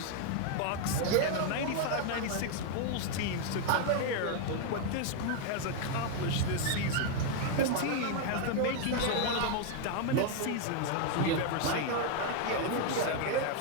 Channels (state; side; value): different; both; correlation 0.01